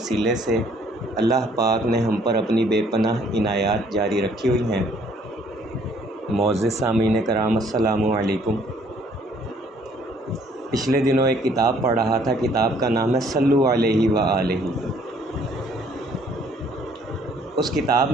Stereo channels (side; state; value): both; normal; correlation 0.61